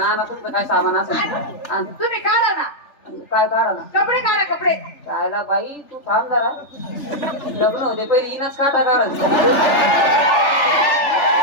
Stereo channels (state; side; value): late; right; 3.4 ms